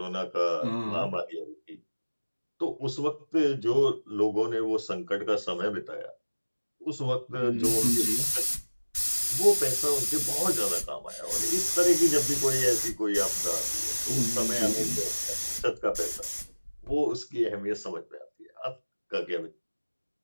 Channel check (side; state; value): both; inverted; correlation -1.00